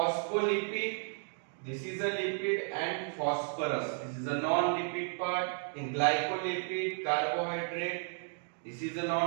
this is a lipid and phosphorus, this is a non-lipid part. In glycolipid, carbohydrate, this is a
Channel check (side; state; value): left; silent; 55 dB below the other